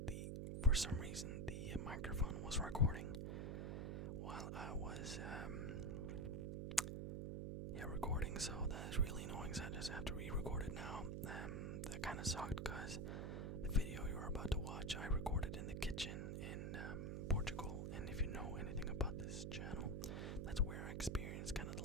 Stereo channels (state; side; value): noise; right; hum, 2 dB below the sound